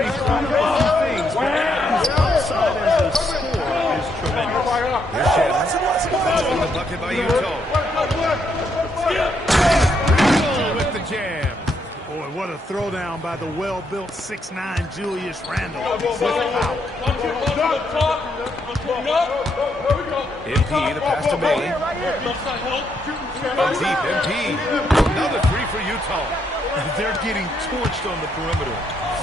he's doing a few things, but his upside as a scorer is tremendous. Here's Shannon. Following the bucket by Utah. Randall with the jam. Boy, what a throwdown by the well-built 6'9" Julius Randle. MP, the pass to Bailey. On deep, MP. Another three for Utah. They're getting torched on the perimeter.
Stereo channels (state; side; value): normal; both; correlation 0.76